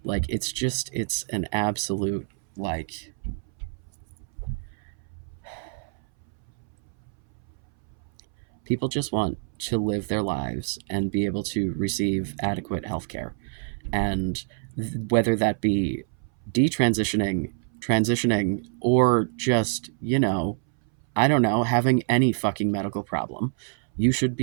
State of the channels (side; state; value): left; silent; 61 dB below the other